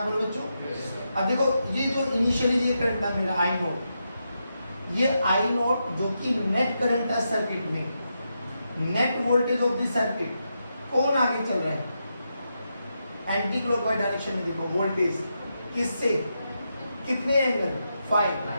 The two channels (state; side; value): inverted; both; correlation -0.85